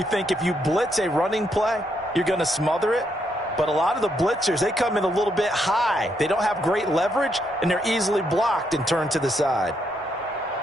think if you blitz a running play, you're going to smother it. But a lot of the blitzers, they come in a little bit high. They don't have great leverage, and they're easily blocked and turned to the side.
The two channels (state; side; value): normal; both; correlation 0.77